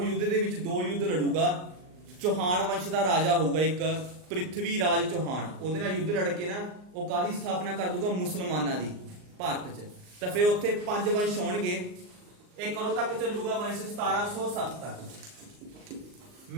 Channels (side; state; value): left; late; 39 ms